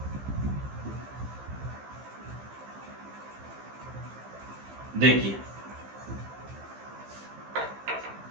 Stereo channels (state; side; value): late; left; 15 ms